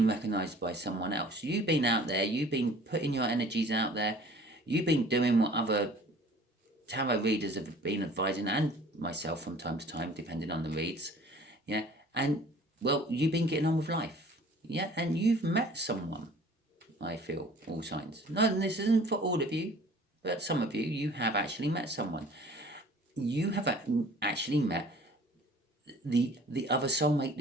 recognised by someone else. You've been out there. You've been putting your energies out there. You've been doing what other tarot readers have been advising, and myself from time to time, depending on the reads. Yeah, and well, you've been getting on with life. Yeah, and you've met someone. I feel all signs. No, and this isn't for all of you, but some of you have actually met someone. You have actually met the other soulmate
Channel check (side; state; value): both; normal; correlation 0.50